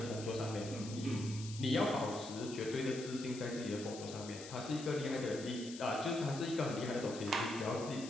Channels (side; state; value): left; noise; hiss, 12 dB below the sound